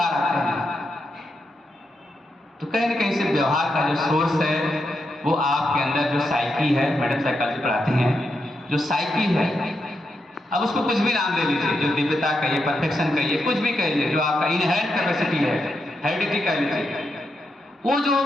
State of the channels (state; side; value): normal; both; correlation 0.84